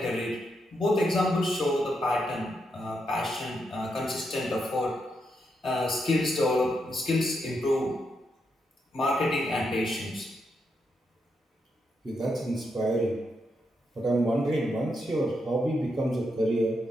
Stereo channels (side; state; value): both; normal; correlation 0.82